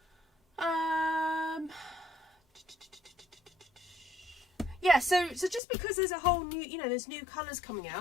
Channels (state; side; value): drops out; right; at 5.6 s